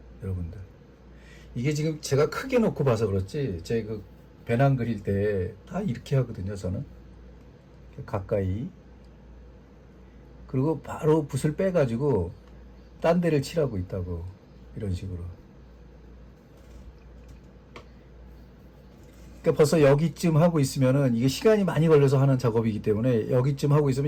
여러분들, 이게 지금 제가 크게 놓고 봐서 그렇지, 제 그 배낭 그릴 때 다 이렇게 하거든요, 저는. 가까이. 그리고 바로 붓을 빼가지고 딴 데를 칠하고 있다고, 이런 식으로. 그러니까 벌써 여기쯤 하고 있으면은, 이게 시간이 많이 걸려서 하는 작업이기 때문에 여기쯤 하고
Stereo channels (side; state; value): both; identical; correlation 1.00